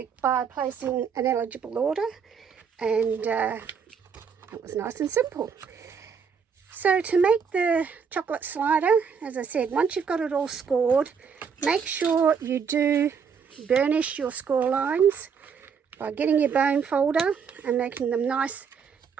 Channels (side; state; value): left; quieter; 6.4 dB